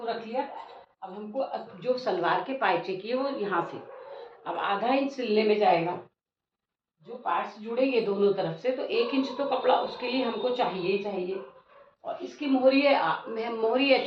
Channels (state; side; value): identical; both; correlation 1.00